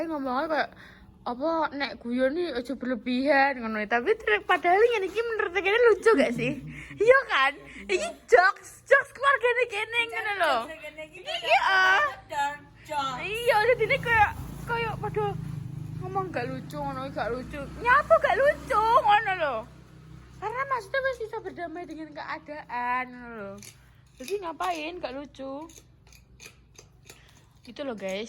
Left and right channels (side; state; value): both; identical; correlation 1.00